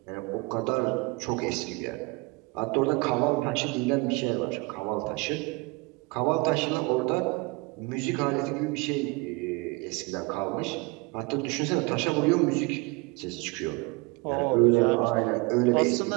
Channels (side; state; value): left; quieter; 26.0 dB